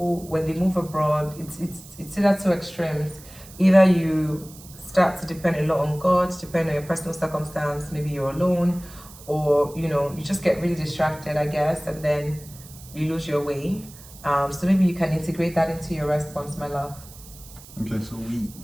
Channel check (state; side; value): noise; right; hiss, 19 dB below the sound